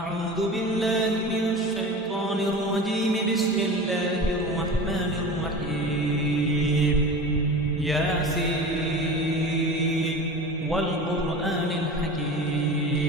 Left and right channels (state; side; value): normal; both; correlation 0.33